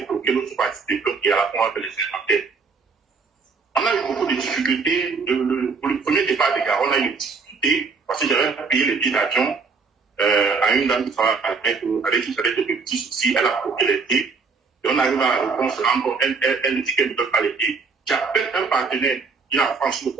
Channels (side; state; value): left; quieter; 4.9 dB